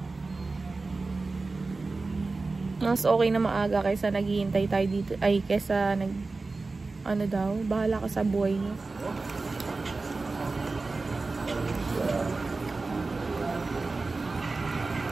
Mas okay na maaga kaysa naghihintay tayo dito. Ay, kaysa ano daw, bahala ka sa buhay niyo.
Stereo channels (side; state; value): left; quieter; 3.7 dB